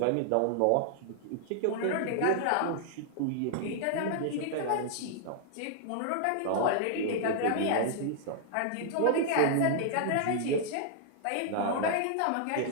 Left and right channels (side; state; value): both; different; correlation -0.01